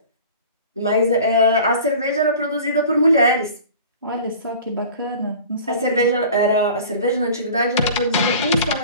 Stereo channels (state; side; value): inverted; both; correlation -0.42